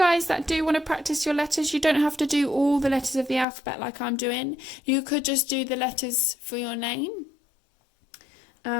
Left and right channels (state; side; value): drops out; right; at 3.5 s